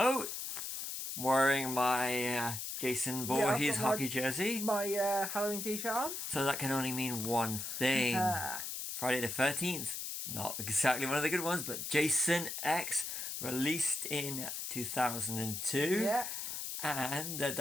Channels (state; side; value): noise; left; hiss, 5 dB below the sound